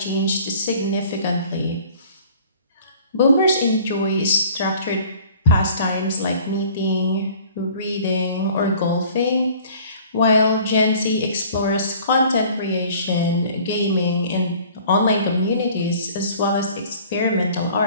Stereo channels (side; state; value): both; inverted; correlation -0.50